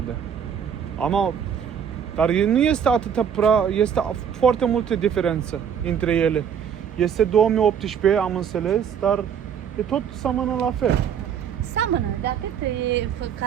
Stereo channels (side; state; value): left; quieter; 8.0 dB